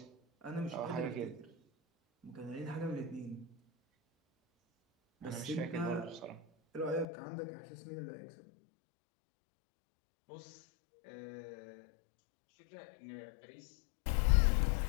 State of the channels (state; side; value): drops out; right; at 7.1 s